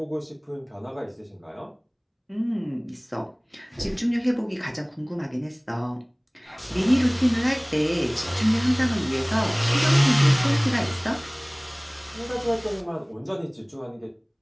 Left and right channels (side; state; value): both; identical; correlation 1.00